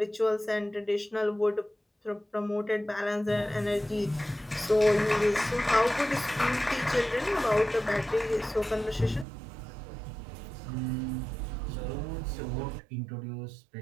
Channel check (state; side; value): drops out; left; at 9.2 s